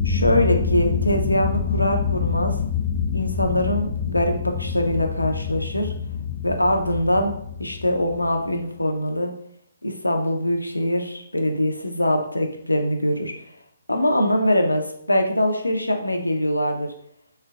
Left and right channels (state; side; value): inverted; both; correlation -0.76